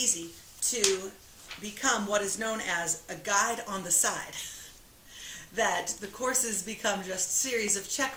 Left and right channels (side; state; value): both; identical; correlation 1.00